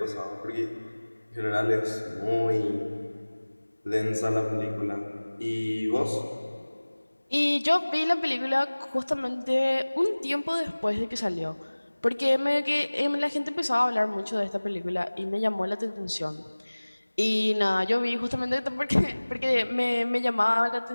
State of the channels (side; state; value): both; inverted; correlation -1.00